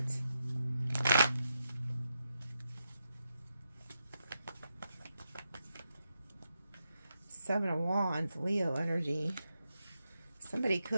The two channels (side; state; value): both; inverted; correlation -0.85